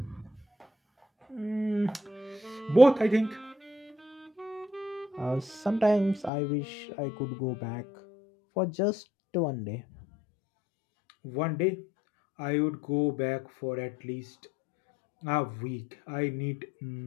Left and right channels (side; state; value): right; drops out; at 6.3 s